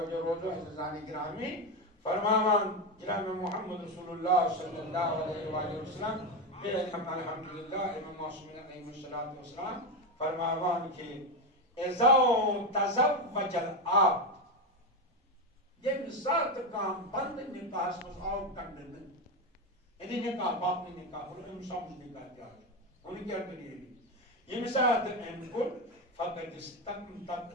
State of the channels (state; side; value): normal; both; correlation 0.13